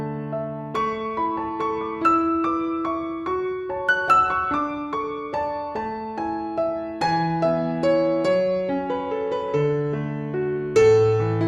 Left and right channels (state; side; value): identical; both; correlation 1.00